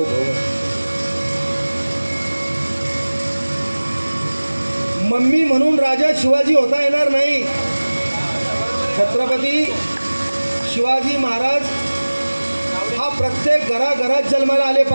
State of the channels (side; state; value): both; inverted; correlation -1.00